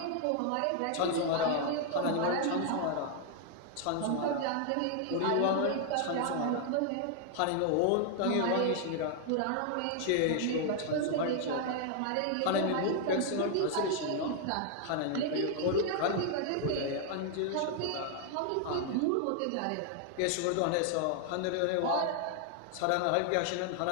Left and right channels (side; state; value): both; different; correlation 0.00